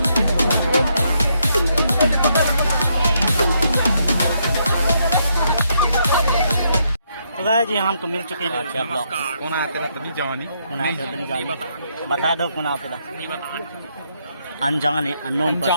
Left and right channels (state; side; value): inverted; both; correlation -0.75